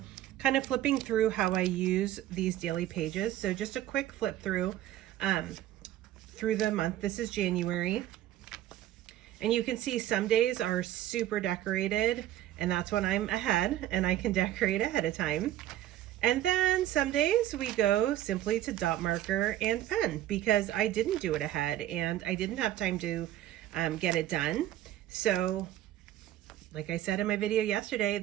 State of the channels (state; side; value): quieter; left; 13.1 dB